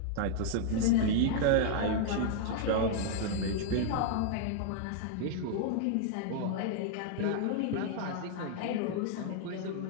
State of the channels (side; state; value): both; different; correlation -0.01